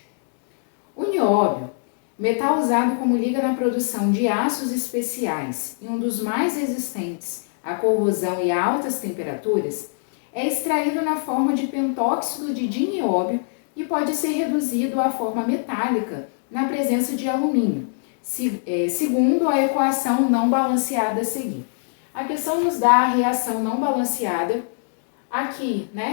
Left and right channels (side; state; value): right; silent; digital silence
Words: O nióbio, metal usado como liga na produção de aços especiais e um dos mais resistentes à corrosão e a altas temperaturas, é extraído na forma de pentóxido de dinióbio e pode ser reduzido à forma metálica na presença de alumínio, segundo a equação não balanceada a seguir. A questão nos dá a reação não balanceada. Aqui,